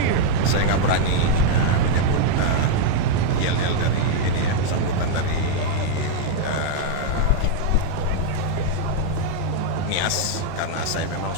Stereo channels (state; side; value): different; both; correlation -0.01